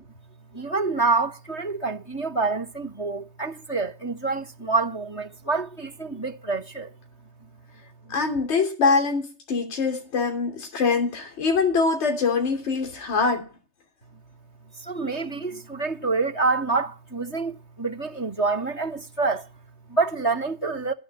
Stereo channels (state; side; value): late; right; 3.3 ms